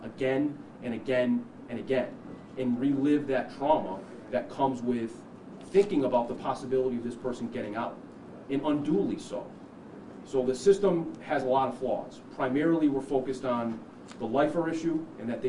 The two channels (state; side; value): identical; both; correlation 1.00